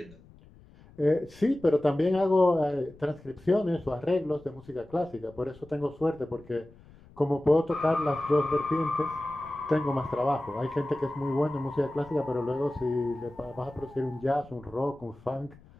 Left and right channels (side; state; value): left; noise; rumble, 24 dB below the sound